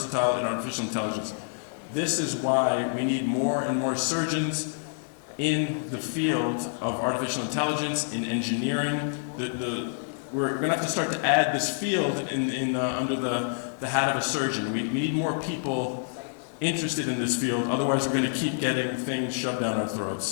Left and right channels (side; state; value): right; silent; digital silence